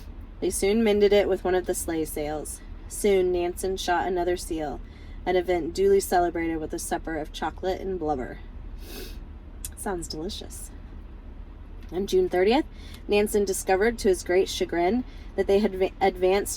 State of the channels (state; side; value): identical; both; correlation 1.00